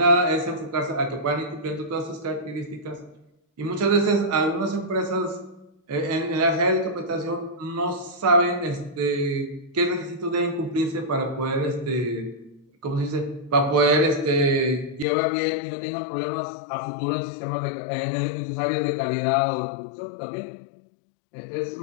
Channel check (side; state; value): right; drops out; at 15.1 s